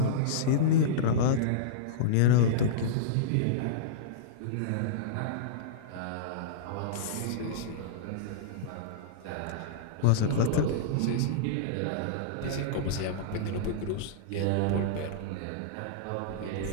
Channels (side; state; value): both; different; correlation -0.03